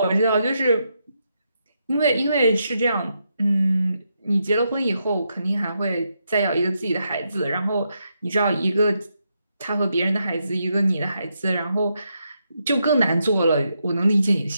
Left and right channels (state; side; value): inverted; both; correlation -0.82